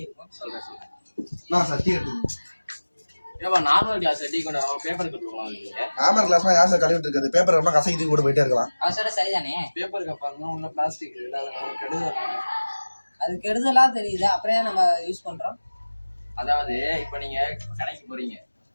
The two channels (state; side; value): inverted; both; correlation -1.00